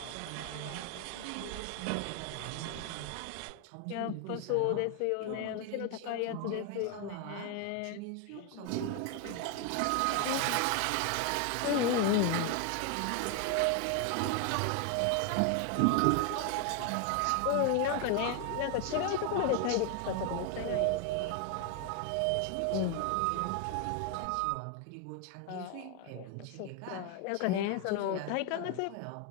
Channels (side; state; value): both; different; correlation 0.01